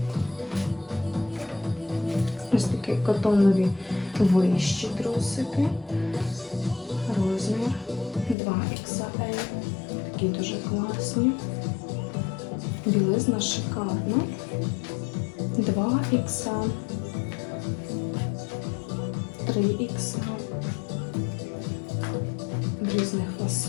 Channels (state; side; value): drops out; right; at 8.3 s